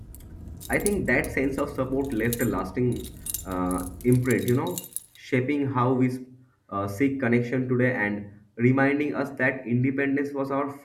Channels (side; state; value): both; identical; correlation 1.00